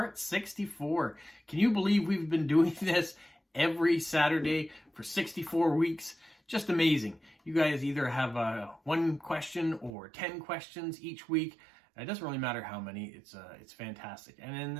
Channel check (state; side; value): drops out; left; at 10.0 s